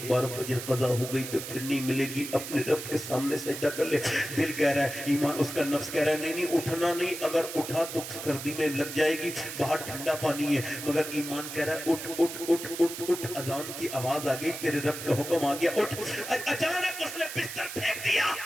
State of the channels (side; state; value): right; noise; hiss, 8 dB below the sound